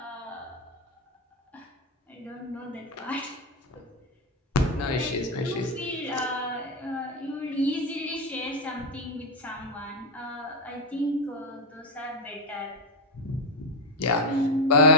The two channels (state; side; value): normal; both; correlation 0.08